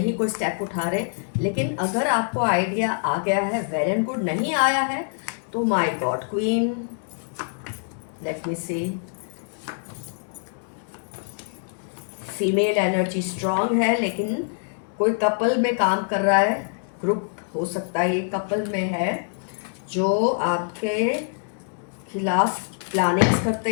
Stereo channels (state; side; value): silent; right; 62 dB below the other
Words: कोई स्टेप उठा रहे। लेकिन अगर आपको आइडिया आ गया है, वेल एंड गुड। नहीं आया है तो my god queen, let me see. Female energy strong है, लेकिन कोई कपल में काम कर रहा है, ग्रुप हो सकता है ये कपल में है, जो आपके खिलाफ प्लानिंग्स करते